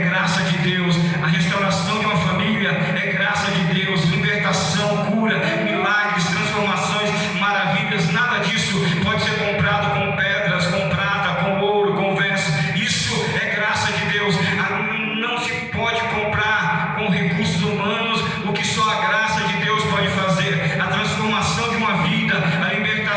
graça de Deus, a restauração de uma família é graça de Deus, libertação, cura, milagres, transformações, maravilhas. Nada disso pode ser comprado com pedras, com prata, com ouro, com vestes. Isso é graça de Deus. Não se pode comprar com recursos humanos o que só a graça de Deus pode fazer. A transformação de uma vida, a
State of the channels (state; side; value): identical; both; correlation 1.00